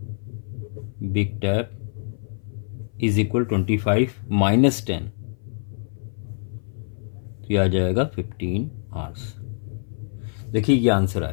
big tap is equal 25 minus 10, तो यह आ जाएगा 15 hours। देखिए ये आंसर आ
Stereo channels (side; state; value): right; silent; 56 dB below the other